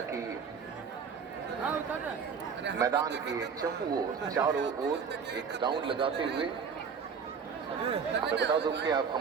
मैदान के चारों ओर एक राउंड लगाते हुए। मैं बता दूं कि आप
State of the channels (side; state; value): left; quieter; 6.2 dB